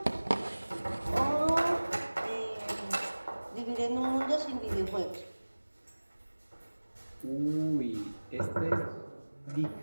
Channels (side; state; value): both; inverted; correlation -1.00